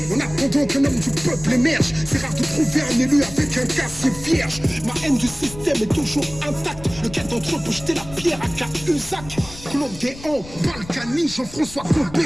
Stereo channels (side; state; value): left; noise; rumble, 16 dB below the sound